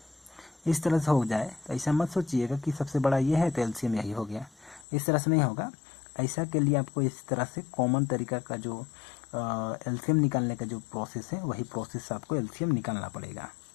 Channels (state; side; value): drops out; right; at 4.9 s